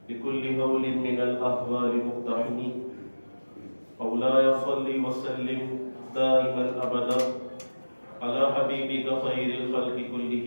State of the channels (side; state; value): both; inverted; correlation -1.00